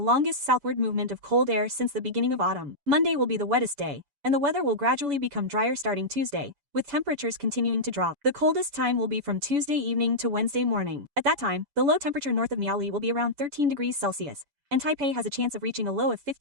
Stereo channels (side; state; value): left; late; 7.0 ms